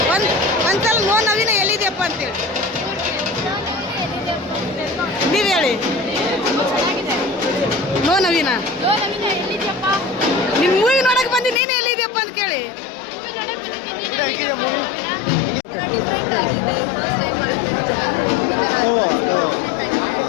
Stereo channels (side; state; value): right; drops out; at 11.6 s